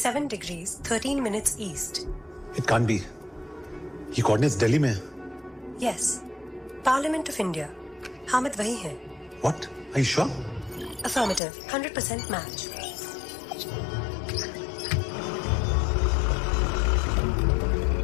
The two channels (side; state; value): right; drops out; at 11.4 s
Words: degrees 13 minutes east. It can't be. ये coordinates दिल्ली में है। Yes, Parliament of India. Hamid वही है। What? Are you sure? Affirmative, 100% match.